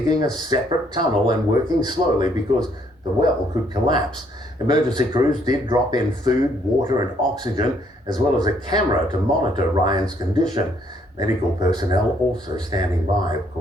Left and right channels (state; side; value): normal; both; correlation 0.67